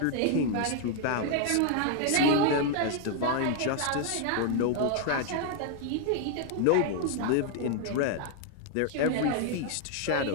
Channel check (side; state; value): both; different; correlation 0.00